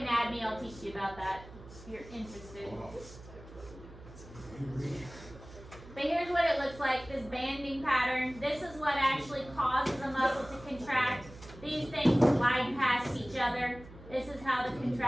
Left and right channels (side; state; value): right; noise; hum, 18 dB below the sound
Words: I'll teach you about that if you're interested. But here's what it looks like, this banding pattern. This is what actually causes a muscle to contract. These things slide past each other. This is how the